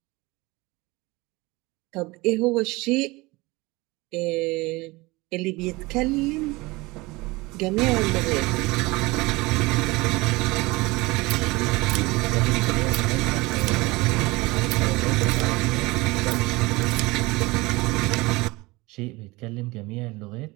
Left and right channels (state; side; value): quieter; left; 22.6 dB